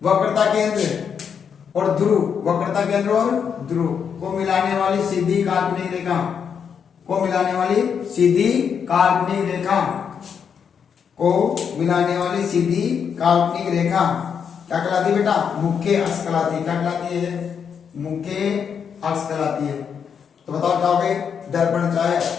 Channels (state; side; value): quieter; right; 7.1 dB